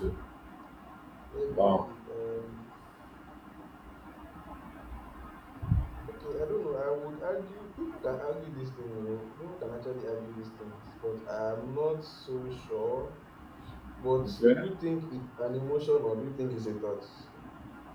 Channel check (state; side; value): identical; both; correlation 1.00